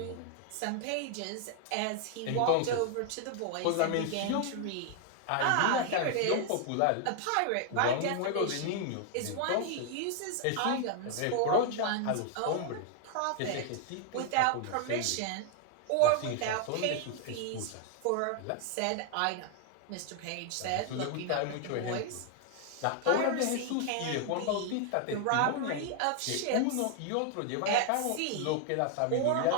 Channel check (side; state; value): both; different; correlation 0.00